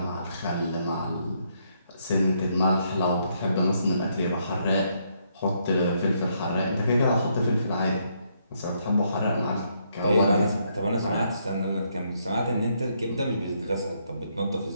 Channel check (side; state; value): both; inverted; correlation -0.74